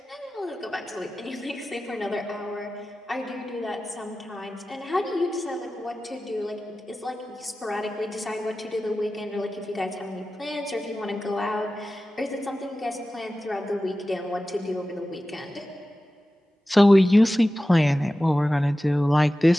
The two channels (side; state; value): both; normal; correlation 0.95